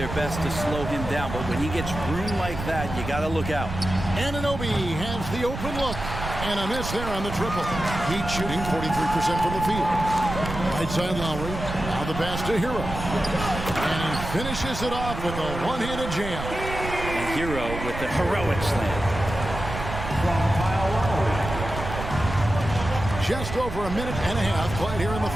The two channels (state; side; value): noise; right; rumble, 7 dB below the sound